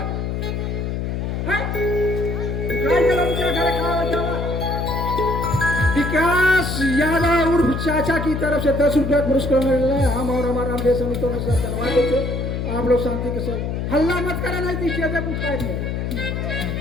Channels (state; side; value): noise; left; hum, 2 dB below the sound